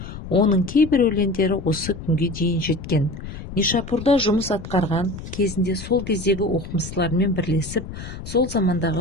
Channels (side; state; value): left; noise; rumble, 11 dB below the sound